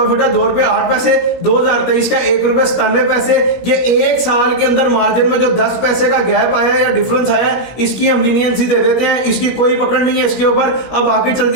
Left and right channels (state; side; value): late; right; 17 ms